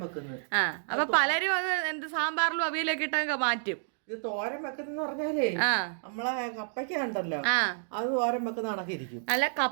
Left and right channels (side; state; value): left; silent; digital silence